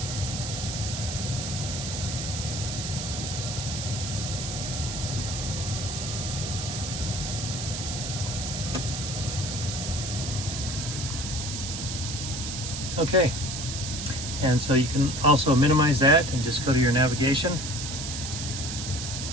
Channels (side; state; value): right; noise; hiss, 5 dB below the sound